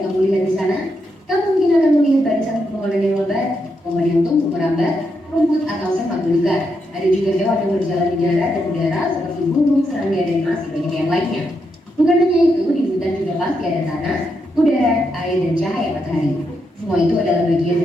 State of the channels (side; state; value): both; normal; correlation 0.82